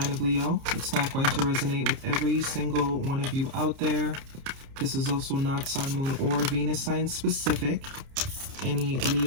of Leo. It's not going to resonate with every single one of you out there. This is also not Sun, Moon, or Venus sign specific. Any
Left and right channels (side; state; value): left; late; 30 ms